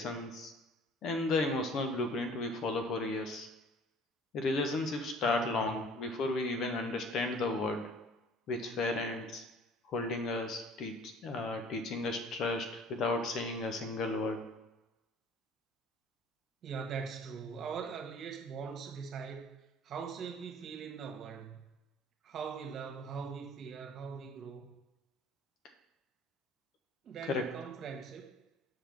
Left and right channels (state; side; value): normal; both; correlation 0.50